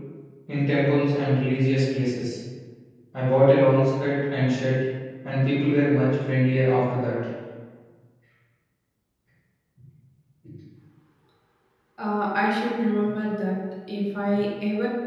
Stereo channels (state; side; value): identical; both; correlation 1.00